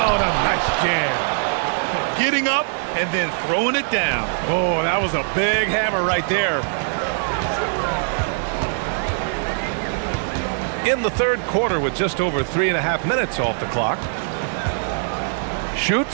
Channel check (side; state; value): left; silent; 60 dB below the other